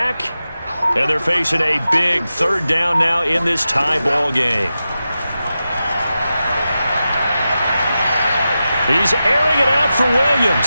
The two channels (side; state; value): both; inverted; correlation -0.92